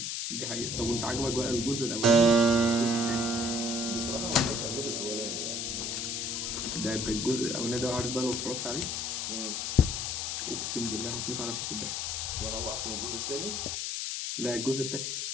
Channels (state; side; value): noise; left; hiss, 2 dB below the sound